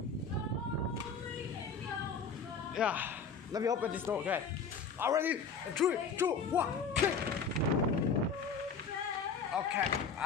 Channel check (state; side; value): quieter; right; 5.3 dB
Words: Yeah. Let me open this door, okay? Already? 3, 2, 1, okay. Okay.